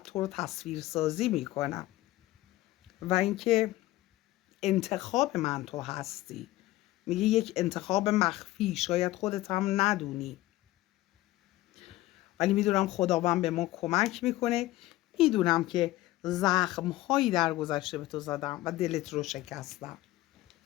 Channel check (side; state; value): right; quieter; 17.0 dB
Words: رو تصویر سازی میکنم و اینکه انتخاب من تو هستی. میگه یک انتخاب مخفی، شاید خودت هم ندونی، ولی میدونم خداوند به ما کمک میکنه. میدونم که زخمهایی در گذشته به تو زدم و دلت رو شکستم.